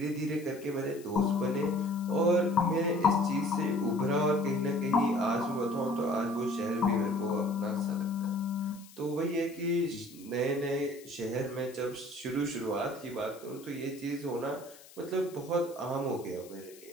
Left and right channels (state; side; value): noise; left; hiss, 21 dB below the sound